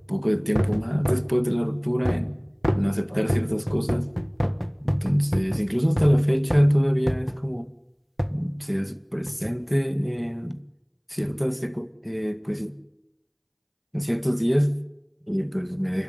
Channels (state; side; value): identical; both; correlation 1.00